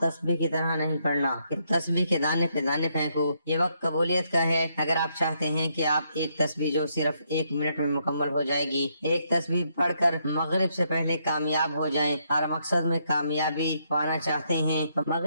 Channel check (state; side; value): inverted; both; correlation -0.76